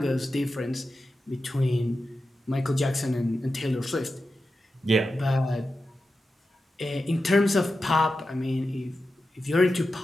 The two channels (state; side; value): normal; both; correlation 0.91